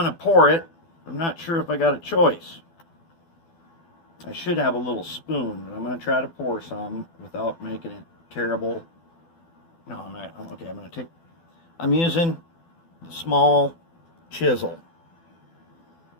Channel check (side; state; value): right; late; 12 ms